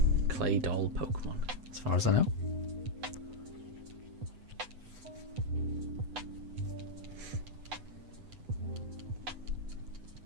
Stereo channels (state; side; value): late; left; 8.0 ms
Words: Claydol Pokemon, as far as I know.